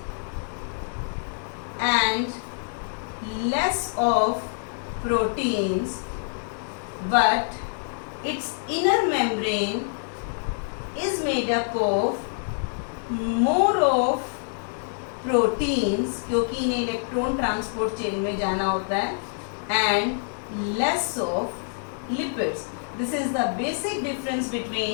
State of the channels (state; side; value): silent; right; digital silence